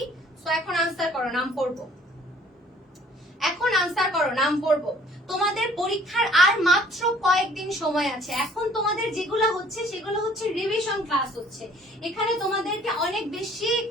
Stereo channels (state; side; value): normal; both; correlation 0.56